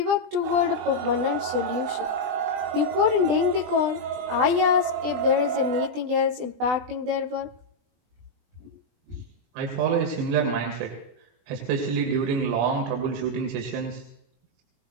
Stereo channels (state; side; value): late; left; 20 ms